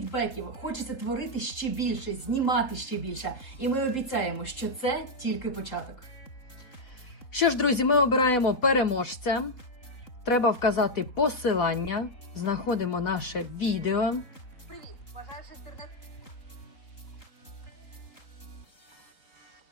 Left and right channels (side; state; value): right; late; 4.0 ms